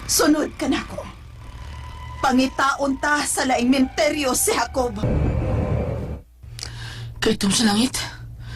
Sunod ka na ko. Pangitaon ta sa laing minteryo si Jacob. Kahit sa langit,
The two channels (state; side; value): identical; both; correlation 1.00